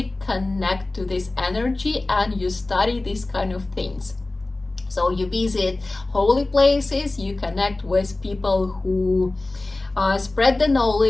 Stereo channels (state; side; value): quieter; right; 3.0 dB